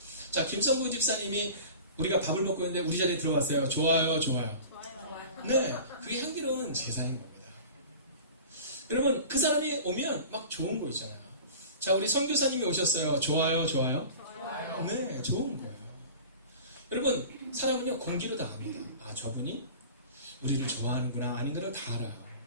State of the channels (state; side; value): inverted; both; correlation -0.38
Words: 자, 김성구 집사님이 우리가 밥을 먹고 있는데 우리 자리에 들어왔어요. 좋아요, 좋아요. 네, 그게 향기로운 제사인 겁니다. 여러분, 그 사람이 오면 막 좋은 거 있잖아요. 자, 우리 선교사님이 오셨어요. 좋아요, 좋아요. 네, 좋은 거예요. 여러분, 사람은요 공기로 다 압니다. 아, 저분이 우리를 좋아하는구나 아닌가를 다 알아요.